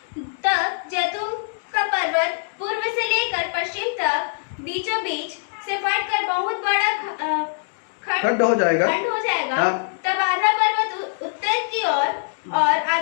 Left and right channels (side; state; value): right; silent; digital silence